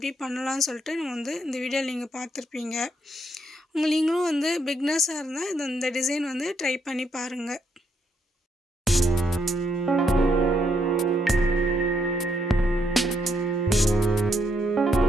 பண்ணலாம்னு சொல்லிட்டு நம்ம வந்து இந்த வீடியோவில் நீங்கள் பார்த்துருப்பீங்க. நீங்களும் வந்து பிகினர்ஸாக இருந்தால் இந்த டிசைன் வந்து ட்ரை பண்ணி பாருங்கள்.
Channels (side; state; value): both; normal; correlation 0.75